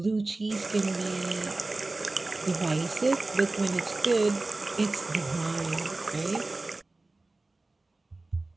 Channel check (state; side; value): quieter; left; 3.1 dB